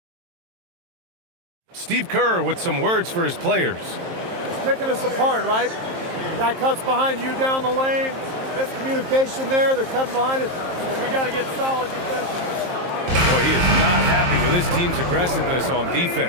Steve Kerr with some words for his players. It's picking us apart, right? Guy cuts behind you down the lane. Miscommunication there. They're cutting behind us. So we got to get solid defensively. Boy, he is not happy with his team's aggressiveness on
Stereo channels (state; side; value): late; left; 23 ms